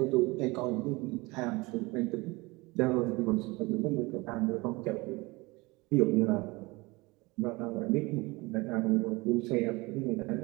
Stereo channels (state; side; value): quieter; left; 23.7 dB